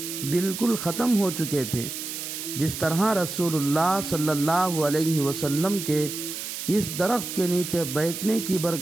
بالکل ختم ہو چکے تھے، جس طرح رسول اللہ صلی اللہ علیہ وسلم کے اس درخت کے نیچے بیٹھنے کی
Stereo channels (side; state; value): right; noise; hiss, 7 dB below the sound